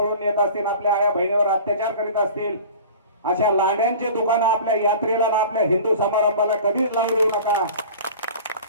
नेत असतील, आपल्या आया बहिणीवर अत्याचार करीत असतील, अशा लांड्यांचे दुकानं आपल्या यात्रेला ना आपल्या हिंदू समारंभाला कधीच लावू देऊ नका.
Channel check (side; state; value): both; inverted; correlation -0.40